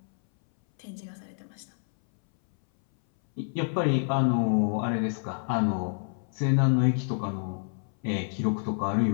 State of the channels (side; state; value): right; silent; 59 dB below the other